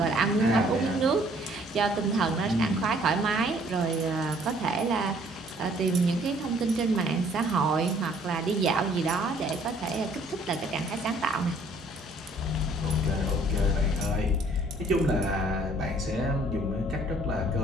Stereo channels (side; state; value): both; normal; correlation 0.59